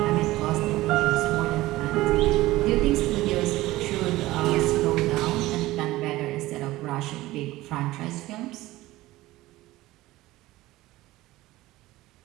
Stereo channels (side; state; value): left; quieter; 17.6 dB